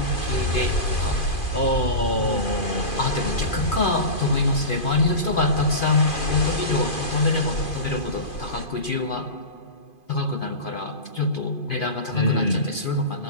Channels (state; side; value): late; right; 2.5 ms